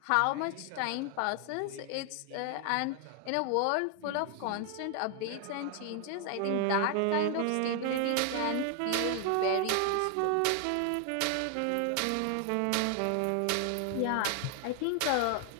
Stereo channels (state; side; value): different; both; correlation 0.00